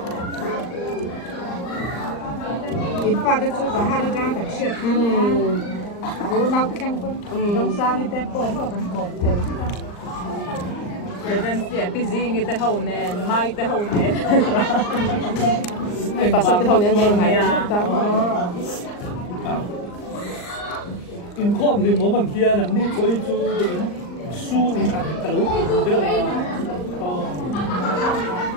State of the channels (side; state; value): right; late; 39 ms